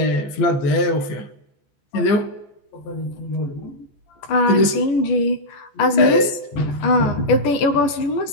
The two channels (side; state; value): right; late; 14 ms